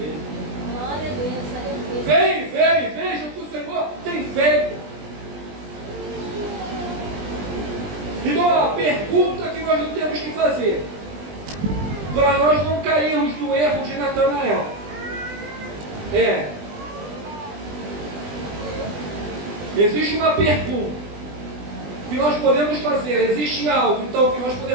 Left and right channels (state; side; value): late; left; 20 ms